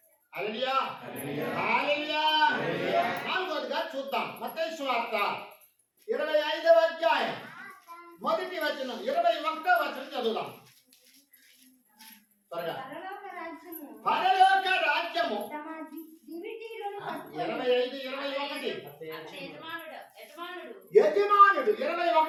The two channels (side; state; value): both; identical; correlation 1.00